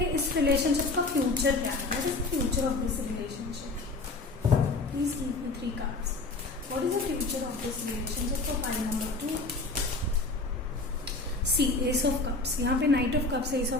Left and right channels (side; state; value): right; quieter; 3.4 dB